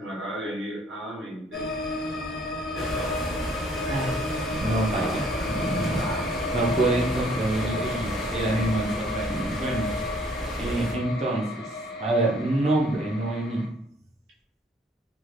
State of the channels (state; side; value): normal; both; correlation 0.61